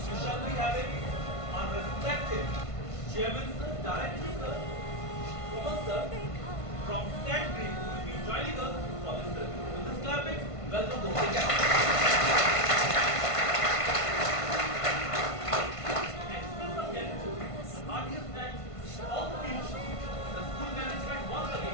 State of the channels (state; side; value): late; right; 1.5 ms